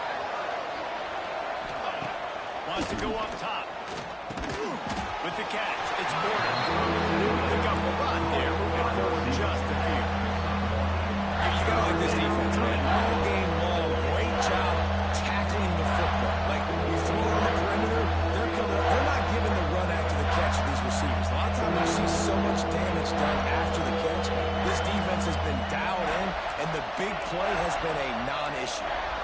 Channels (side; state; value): both; identical; correlation 1.00